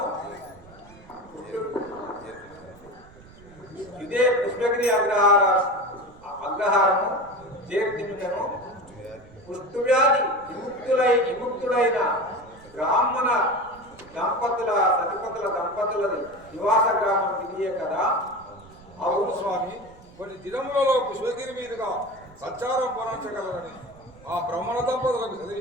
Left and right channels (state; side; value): noise; right; rumble, 23 dB below the sound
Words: ఇదే పుష్పగిరి అగ్రహారము చేర్తిమికను కుష్ఠవ్యాధి విముక్తుడైన బ్రాహ్మణ సతిపతుల దంపతులది నివాస గ్రామం ఇదియే కదా. అవును స్వామి, కొన్ని దినములలో పుష్పగిరి మీదుగా సంచారం పొందగలరని ఆ బ్రహ్మణ దంపతులకు